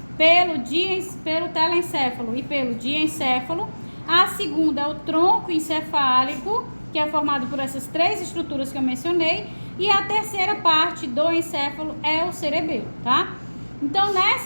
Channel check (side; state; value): both; inverted; correlation -1.00